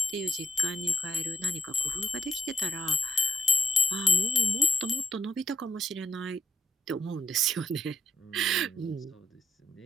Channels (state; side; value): normal; both; correlation 0.78